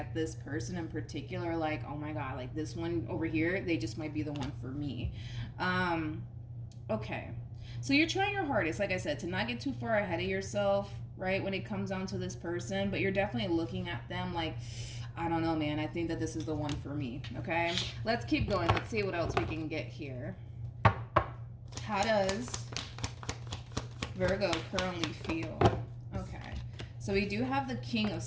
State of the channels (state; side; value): identical; both; correlation 1.00